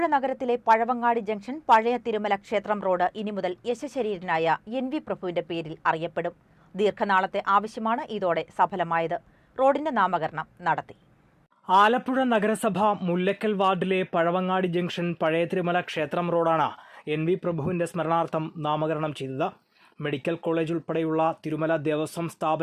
നഗരത്തിലെ പഴവങ്ങാടി ജംഗ്ഷൻ പഴയ തിരുമല ക്ഷേത്രം റോഡ് ഇനി മുതൽ യശശരീരനായ NV പ്രഭുവിന്റെ പേരിൽ അറിയപ്പെടും. ദീർഘനാളത്തെ ആവശ്യമാണ് ഇതോടെ സഫലമായത്. റോഡിന്റെ നാമകരണം നടത്തി. ആലപ്പുഴ നഗരസഭ മുല്ലക്കൽ വാർഡിലെ പഴവങ്ങാടി ജംഗ്ഷൻ പഴയ തിരുമല ക്ഷേത്രം റോഡാണ് NV പ്രഭുവിന്റെ സ്മരണാർത്ഥം നാമകരണം ചെയ്തത്. മെഡിക്കൽ കോളേജ് ഉൾപ്പെടെയുള്ള തിരുമല ദേവസ്വം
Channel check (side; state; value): both; identical; correlation 1.00